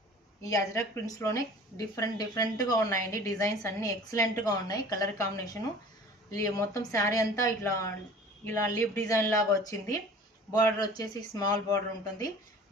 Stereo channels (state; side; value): normal; both; correlation 0.44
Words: ఈ అజరక్ ప్రింట్స్ లోనే డిఫరెంట్ గా ఉన్నాయండి. డిజైన్స్ అన్ని ఎక్సలెంట్ గా ఉన్నాయి. కలర్ కాంబినేషన్ మొత్తం శారీ అంతా ఇలా లీఫ్ డిజైన్ లాగా వచ్చింది. బార్డర్ వచ్చేసి స్మాల్ బార్డర్ ఉంటుంది.